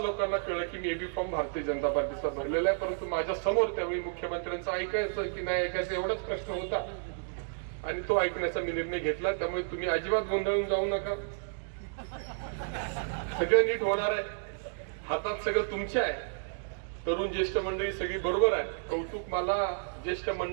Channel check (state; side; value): silent; left; digital silence